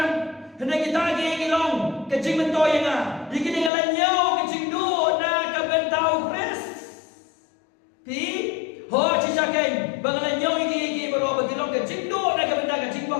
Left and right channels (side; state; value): right; drops out; at 3.7 s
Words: Hendak kita lagi ngilong ke jing mentoy nga, dikini ngalanyo ke jing do na ke bentau kres. Pi ho cisaken bangalanyo iki baro bagilong ke jing do na ke bentau ke jing